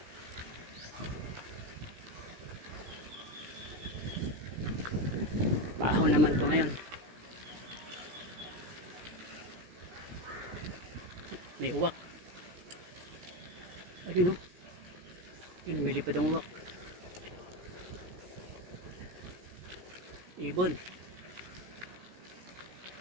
Baho naman to ngayon. May uwak. Ayun o. Yun, may lipad ang uwak. Ibon.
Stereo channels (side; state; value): left; late; 17 ms